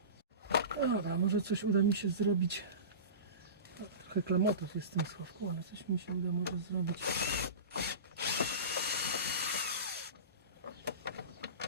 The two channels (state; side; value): inverted; both; correlation -0.31